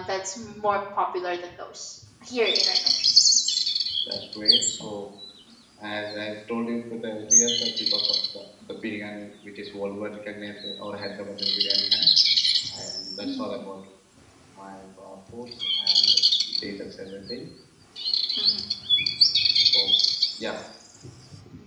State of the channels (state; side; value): identical; both; correlation 1.00